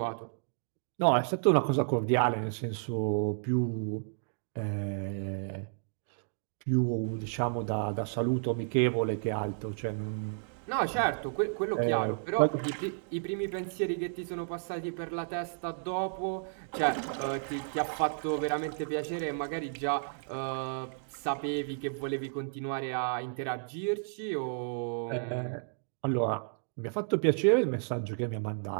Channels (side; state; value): left; silent; digital silence